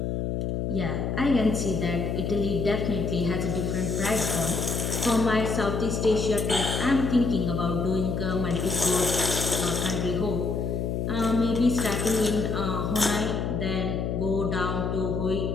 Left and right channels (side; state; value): left; noise; hum, 1 dB below the sound